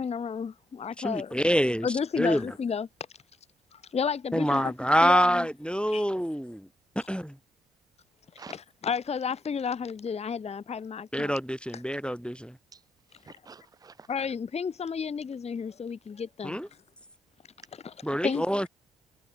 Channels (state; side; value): normal; both; correlation 0.82